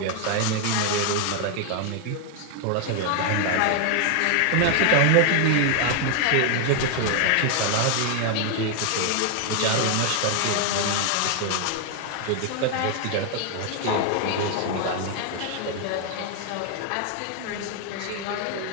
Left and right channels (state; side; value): different; both; correlation 0.00